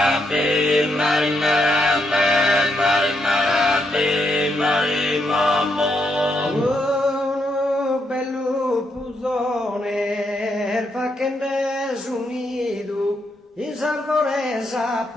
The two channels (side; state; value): both; normal; correlation 0.78